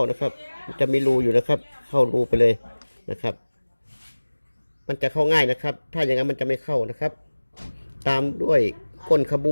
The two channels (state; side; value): inverted; both; correlation -1.00